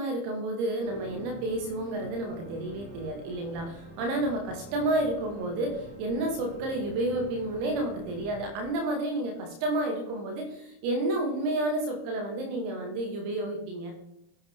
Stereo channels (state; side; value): late; left; 30 ms